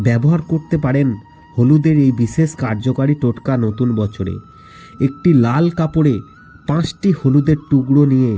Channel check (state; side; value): identical; both; correlation 1.00